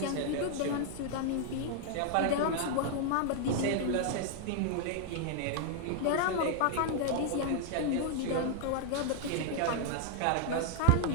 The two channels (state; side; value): different; both; correlation 0.00